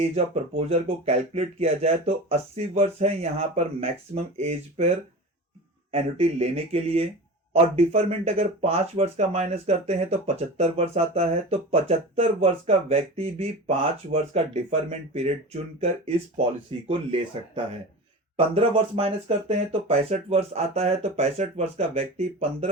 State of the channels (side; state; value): both; normal; correlation 0.32